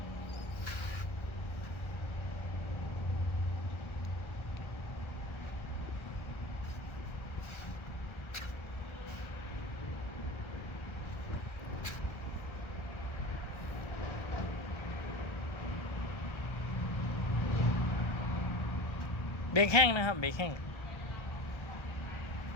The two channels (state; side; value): late; right; 1.4 ms